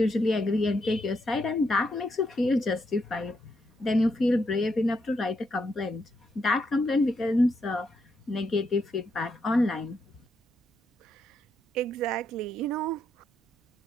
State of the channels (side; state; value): both; normal; correlation 0.79